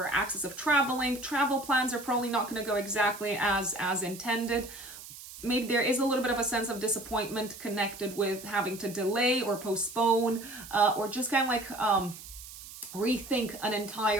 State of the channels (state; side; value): noise; right; hiss, 15 dB below the sound